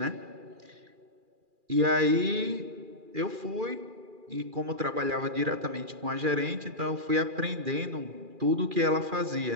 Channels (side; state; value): left; late; 2.4 ms